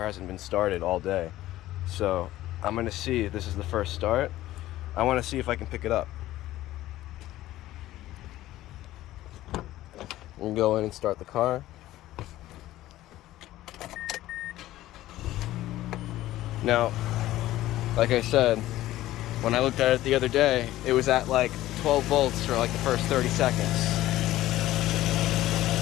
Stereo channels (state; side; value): quieter; right; 15.2 dB